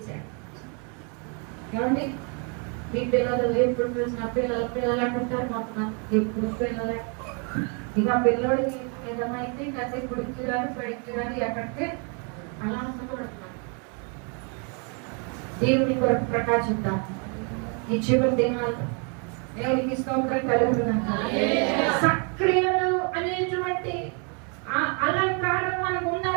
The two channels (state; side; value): quieter; left; 37.1 dB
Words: ఏమండి మీ పిల్లలు ఎప్పుడు చూసిన పిల్లలు అంటుంటారు, మొత్తం ఎప్పుడు పిల్లలే. ఇక పిల్లోడికి ఏదమైతే కాసేపు గుడికి రాని బడికి రాని ఎక్కడికి అలా అనుకుంటున్నాను. దేవుని కొరకు ప్రకాశిద్దాం ఈ చివరి దినాలు. దేవునికి స్తోత్రం కలుగుతున్నాను. సక్రియలు అనేటువంటి ఆ అలంకారం మనకు